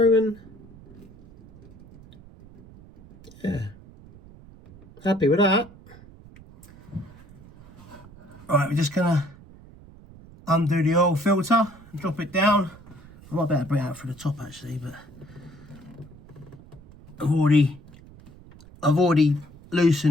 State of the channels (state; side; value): noise; right; rumble, 21 dB below the sound